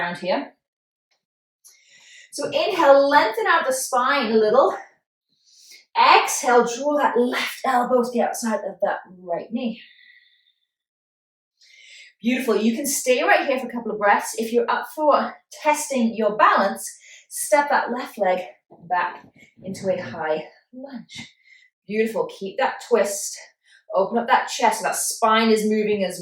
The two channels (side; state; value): both; identical; correlation 1.00